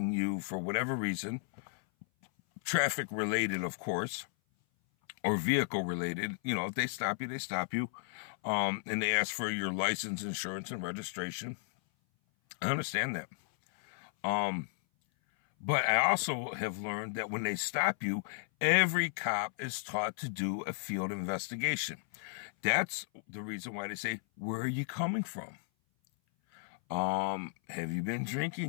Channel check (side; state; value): right; silent; 55 dB below the other